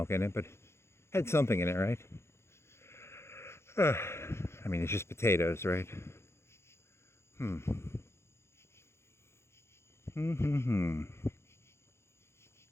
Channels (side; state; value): right; late; 0.13 ms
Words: in it, but it had something in it, right? I mean, it's just potatoes, right? Oh,